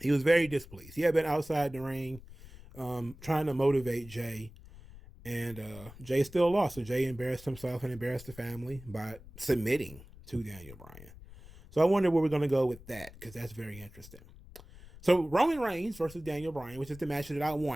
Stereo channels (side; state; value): left; noise; rumble, 19 dB below the sound